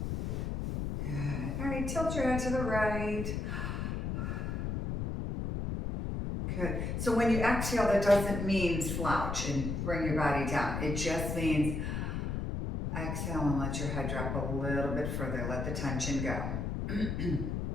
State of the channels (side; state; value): left; noise; rumble, 2 dB below the sound